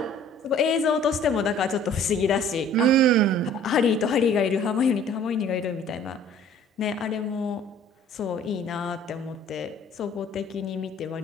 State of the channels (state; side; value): normal; both; correlation 0.52